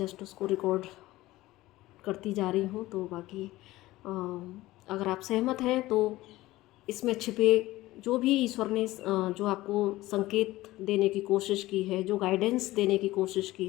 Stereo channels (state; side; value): quieter; right; 17.6 dB